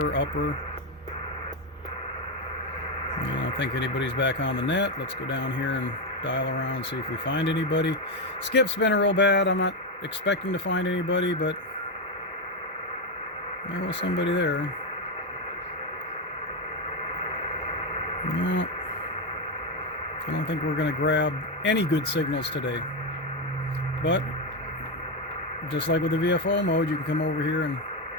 upper. I don't think anybody's back on the net. Let's go down here and dial around, see if we find anybody. Skip's been real bad. I'm not expecting to find anybody, but there was somebody there. No, I don't think we're going to grab any good signals today. But just like with the VFO mode, you can come over here and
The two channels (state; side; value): normal; both; correlation 0.09